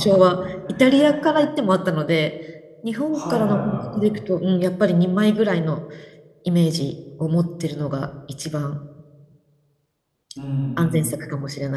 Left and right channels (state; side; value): identical; both; correlation 1.00